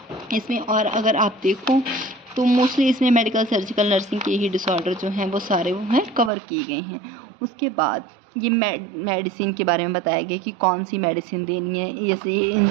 इसमें और अगर आप देखो तो मोस्टली इसमें मेडिकल सर्जिकल नर्सिंग के ही डिसऑर्डर जो हैं वो सारे वो हैं कवर किए गए हैं। उसके बाद ये मेडिसिन के बारे में बताया गया कि कौन सी मेडिसिन देनी है। जैसे ये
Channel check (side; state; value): left; drops out; at 6.3 s